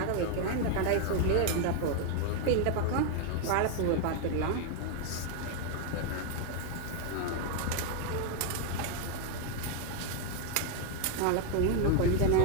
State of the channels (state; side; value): different; both; correlation 0.00